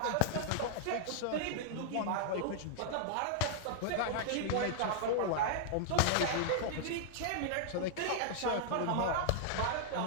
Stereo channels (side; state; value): both; different; correlation -0.01